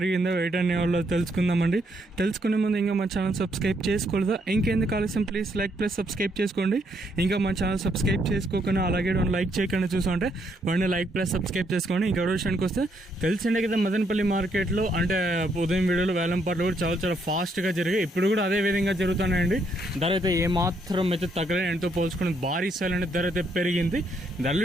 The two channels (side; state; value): both; normal; correlation 0.73